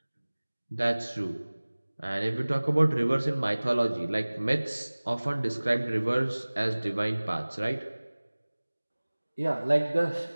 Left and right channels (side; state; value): both; inverted; correlation -1.00